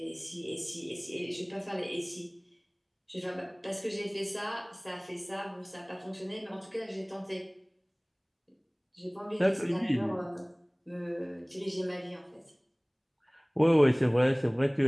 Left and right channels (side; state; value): both; identical; correlation 1.00